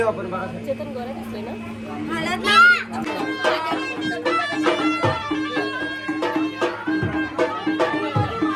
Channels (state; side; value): identical; both; correlation 1.00